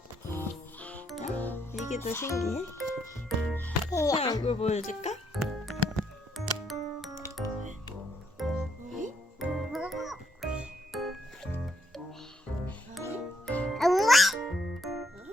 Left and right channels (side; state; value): both; normal; correlation 0.72